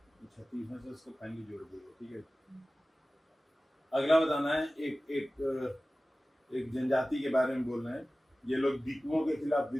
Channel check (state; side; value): normal; both; correlation 0.97